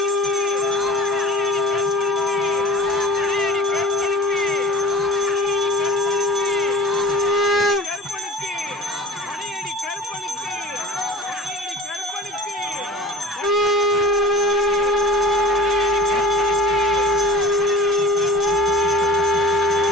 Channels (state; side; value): normal; both; correlation 0.41